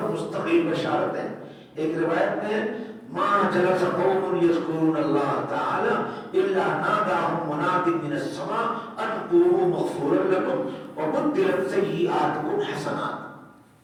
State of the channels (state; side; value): identical; both; correlation 1.00